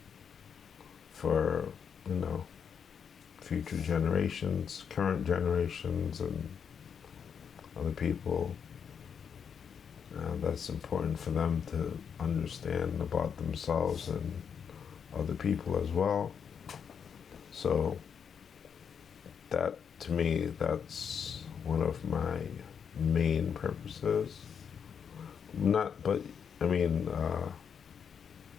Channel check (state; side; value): quieter; right; 7.1 dB